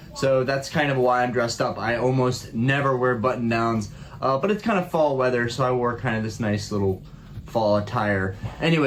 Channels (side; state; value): both; identical; correlation 1.00